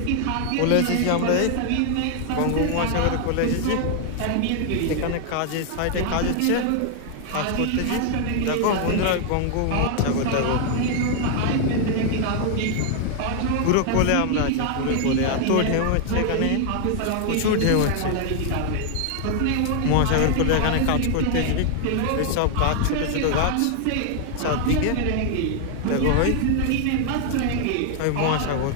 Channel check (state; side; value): different; both; correlation 0.00